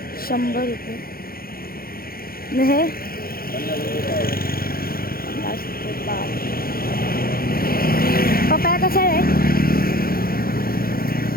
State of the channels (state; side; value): late; right; 0.43 ms